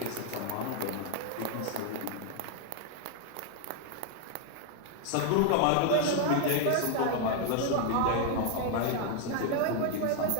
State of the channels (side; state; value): both; different; correlation 0.00